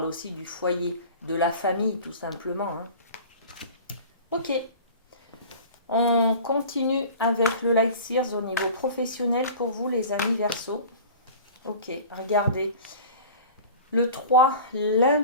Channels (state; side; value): inverted; both; correlation -0.40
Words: aussi du foyer, de la famille tout simplement, hein. Ok, on continue avec le Light Sears au niveau professionnel pour vous les amis Verseau. Ok, regardez. Le 3,